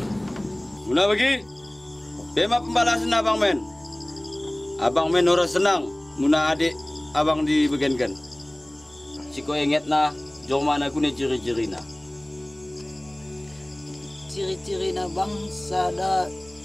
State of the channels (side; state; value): right; noise; hum, 29 dB below the sound